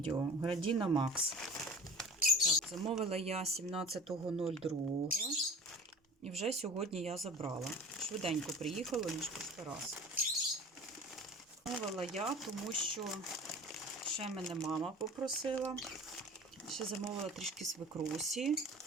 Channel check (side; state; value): both; normal; correlation 0.40